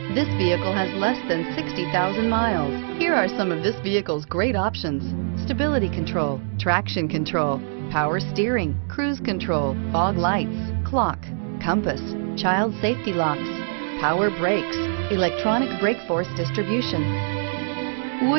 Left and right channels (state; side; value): silent; left; digital silence